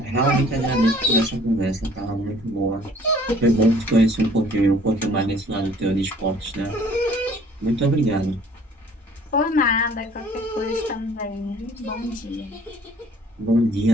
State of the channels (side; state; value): both; normal; correlation 0.55